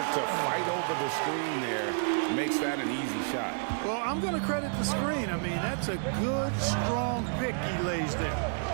to fight over the screen there makes that an easy shot. Well, I'm going to credit the screen. I mean, that's a good, strong pick he lays there.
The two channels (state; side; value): silent; left; 58 dB below the other